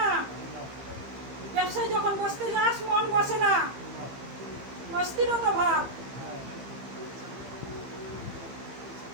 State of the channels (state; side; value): late; left; 15 ms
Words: ব্যবসায় যখন বসতে যাস মন বসে না, অস্থিরতা ভাব।